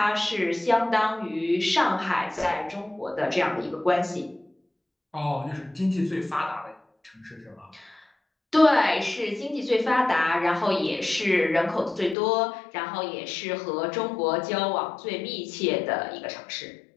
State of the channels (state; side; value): drops out; right; at 12.2 s